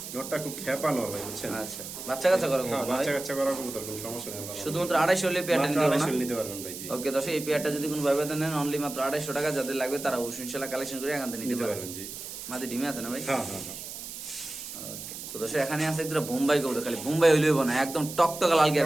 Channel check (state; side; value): noise; right; hiss, 10 dB below the sound